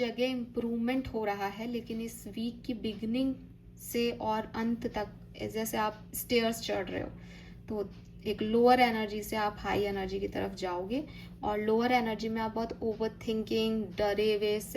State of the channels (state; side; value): identical; both; correlation 1.00